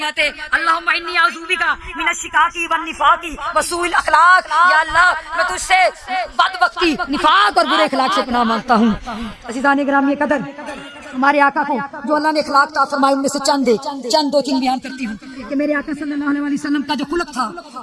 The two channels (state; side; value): identical; both; correlation 1.00